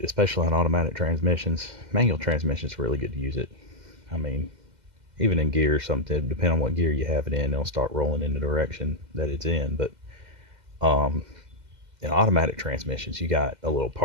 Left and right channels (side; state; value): left; late; 2.0 ms